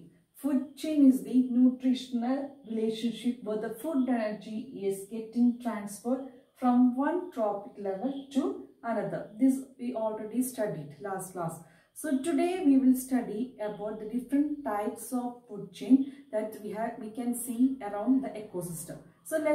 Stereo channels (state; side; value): identical; both; correlation 1.00